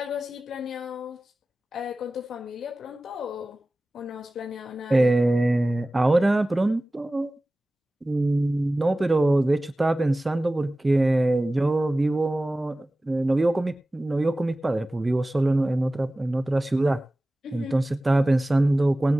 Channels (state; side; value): normal; both; correlation 0.97